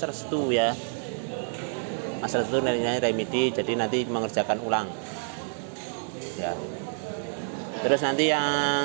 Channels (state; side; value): silent; left; 59 dB below the other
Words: Restu ya. Mas Restu nilainya remedi, jadi nanti mengerjakan ulang. Ya. Terus nanti